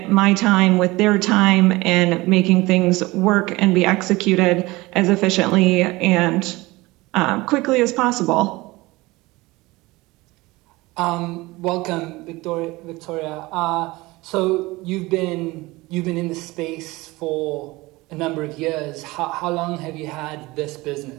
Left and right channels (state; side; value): quieter; left; 21.1 dB